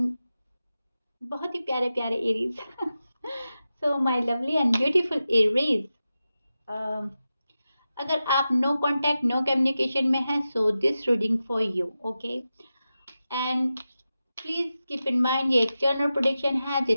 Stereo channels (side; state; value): both; inverted; correlation -0.92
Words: बहुत ही प्यारे प्यारे Aries so my lovely and beautiful Aries, अगर आप नो कॉन्टैक्ट नो कम्युनिकेशन में हैं so this reading for you, okay. And please keep in mind ये एक जनरल प्रेडिक्शन है,